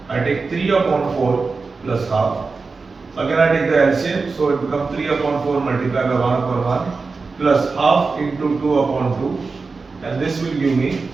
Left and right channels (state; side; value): quieter; left; 4.3 dB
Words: I take 3 upon 4 plus half. Again I take the LCM, so it becomes 3 upon 4 multiplied by 1 upon 1 plus half into 2 upon 2, and this will give me